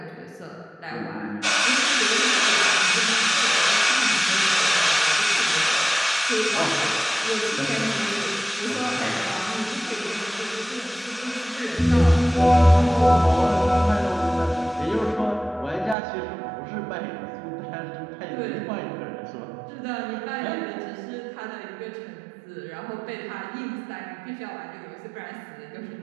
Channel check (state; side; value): drops out; left; at 16.0 s